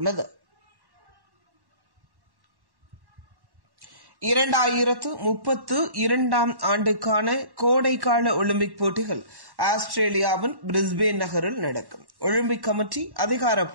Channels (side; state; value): left; late; 1.1 ms